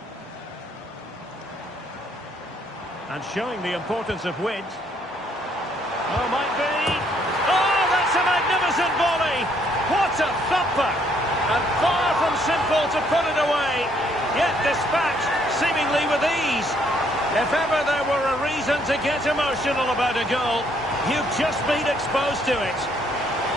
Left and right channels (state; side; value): normal; both; correlation 0.68